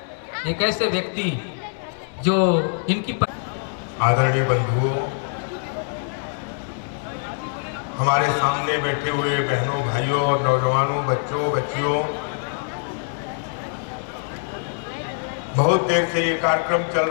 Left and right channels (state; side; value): silent; right; 59 dB below the other